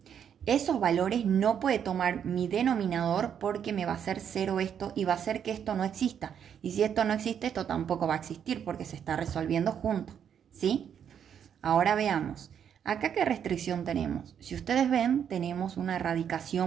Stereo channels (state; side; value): quieter; left; 8.4 dB